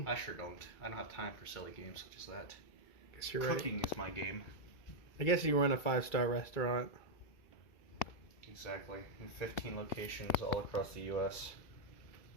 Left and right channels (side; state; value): right; late; 2.3 ms